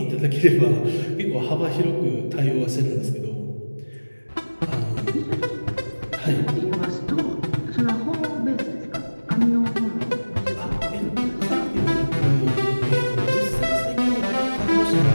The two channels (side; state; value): both; inverted; correlation -1.00